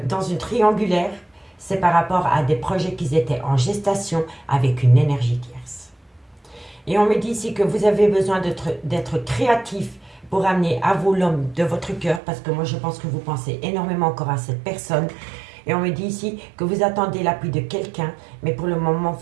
une triangulaire, c'est par rapport à des projets qui étaient en gestation avec une énergie tierce. Et on me dit ici que vous avez besoin d'être créatif pour amener à vous l'homme de votre cœur, parce que moi je pense que vous pensez énormément encore à cette personne. Et on me dit ici que vous attendez l'appui de quelqu'un, mais pour le moment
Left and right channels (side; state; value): left; drops out; at 12.2 s